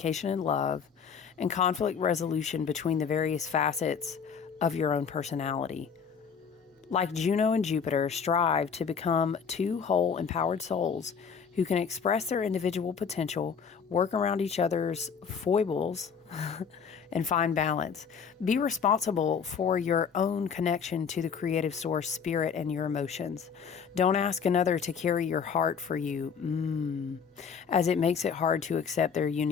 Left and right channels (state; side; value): quieter; right; 6.5 dB